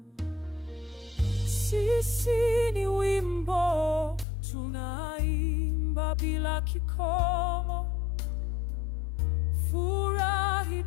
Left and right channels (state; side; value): drops out; right; at 4.2 s